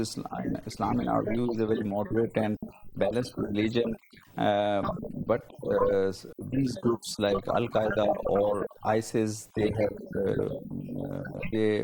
که یک ایدئولوژی و تفسیر بسیار افراطی از ارزش‌های اسلامی دارد. اما از دیدگاه ما اسلام نگاه بسیار عادلانه و متوازن دارد. گروه‌های مانند داعش و القاعده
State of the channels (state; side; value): identical; both; correlation 1.00